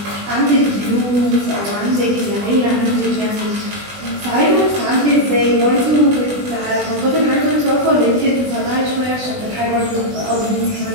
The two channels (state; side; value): late; left; 20 ms